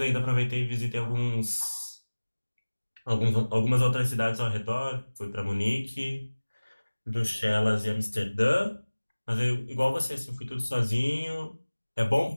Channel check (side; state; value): both; inverted; correlation -1.00